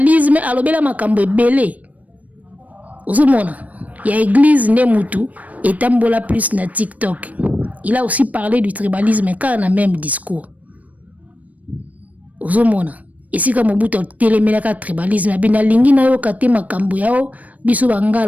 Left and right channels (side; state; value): left; late; 0.071 ms